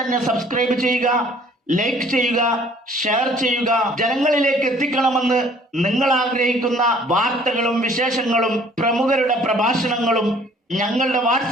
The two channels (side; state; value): both; normal; correlation 0.56